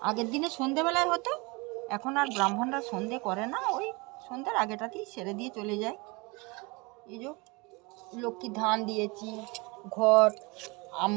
আগের দিনে সন্ধেবেলায় হতো, এখন আর ব্রাহ্মণরা সন্ধে করে না, ওই সন্ধ্যার আগেটাতেই সেরে দিয়ে চলে যায়। এই যে লক্ষ্মী ধান দিয়েছি, ঘট,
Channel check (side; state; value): left; quieter; 26.9 dB